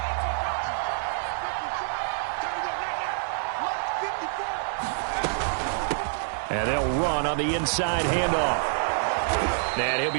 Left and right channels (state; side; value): silent; left; digital silence